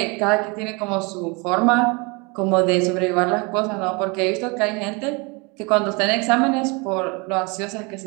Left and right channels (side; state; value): left; quieter; 29.4 dB